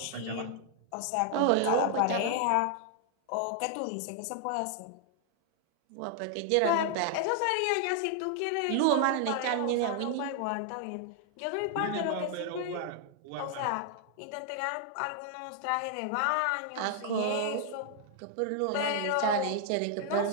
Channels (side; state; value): both; different; correlation 0.00